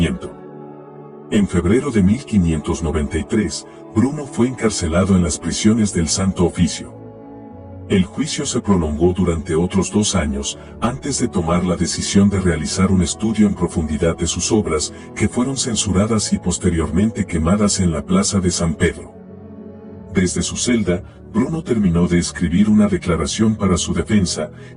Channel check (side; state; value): both; identical; correlation 1.00